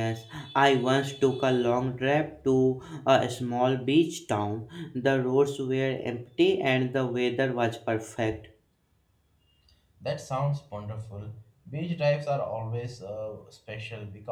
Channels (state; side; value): identical; both; correlation 1.00